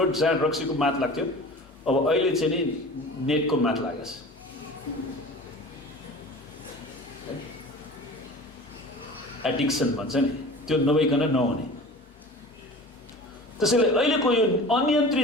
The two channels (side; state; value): both; normal; correlation 0.39